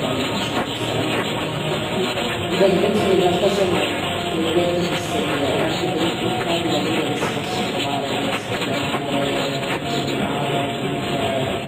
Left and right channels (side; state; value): both; identical; correlation 1.00